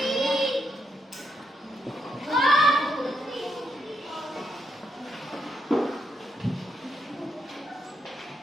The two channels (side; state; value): both; normal; correlation 0.80